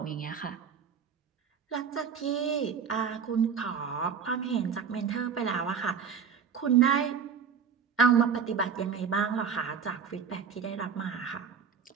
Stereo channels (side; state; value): left; quieter; 6.8 dB